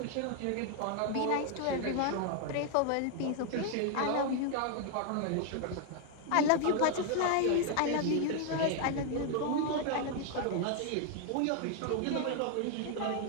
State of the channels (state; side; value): different; both; correlation 0.00